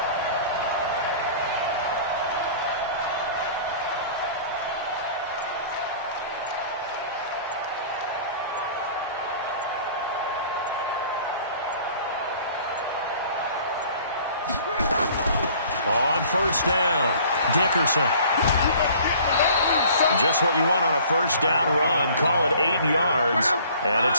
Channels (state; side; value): inverted; both; correlation -0.49